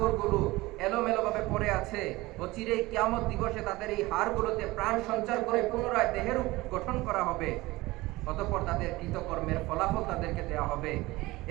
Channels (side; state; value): left; quieter; 20.1 dB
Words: এলোমেলোভাবে পড়ে আছে। অচিরেই কিয়ামত দিবসে তাদের এই হাড়গুলোতে প্রাণ সঞ্চার করে পুনরায় দেহের গঠন করা হবে। অতঃপর তাদের কৃতকর্মের ফলাফল তাদেরকে দেওয়া হবে।